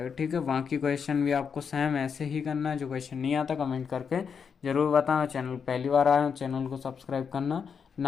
ठीक है, बाकी क्वेश्चन भी आपको सेम ऐसे ही करना है। जो क्वेश्चन नहीं आता कमेंट करके जरूर बताना। चैनल पहली बार आए हो, चैनल को सब्सक्राइब करना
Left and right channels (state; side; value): quieter; right; 6.4 dB